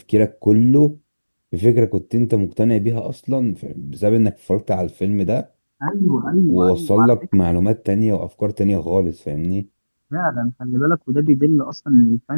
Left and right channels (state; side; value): inverted; both; correlation -1.00